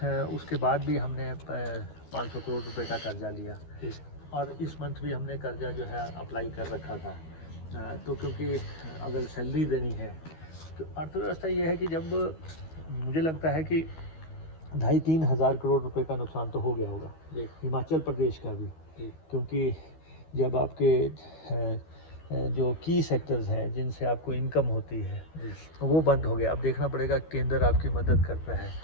उसके बाद भी हमने 500 करोड़ रुपए का कर्जा लिया। जी, और इस मंथ भी हमने कर्जा जो है अप्लाई कर रखा था। तो क्योंकि अगर सैलरी देनी है, तो अर्थव्यवस्था ये है कि जब मुझे लगता है कि 2,500-3 हज़ार करोड़ रुपए का नुकसान तो हो गया होगा जी, हिमाचल प्रदेश का भी, जी, क्योंकि जब आपके जो की सेक्टर्स हैं जिनसे आपको इनकम होती है जी, वो बंद हो गया। अब देखना पड़ेगा केंद्र आपकी मदद करता है,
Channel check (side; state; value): right; late; 13 ms